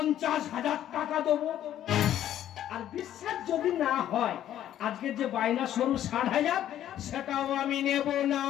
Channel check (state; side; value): quieter; right; 11.6 dB